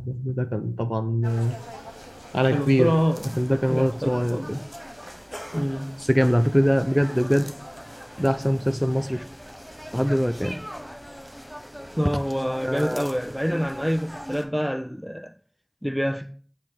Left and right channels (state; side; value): identical; both; correlation 1.00